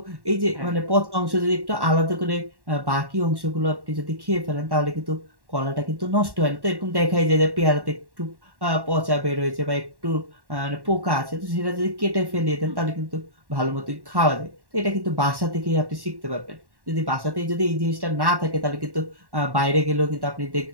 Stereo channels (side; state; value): left; late; 1.1 ms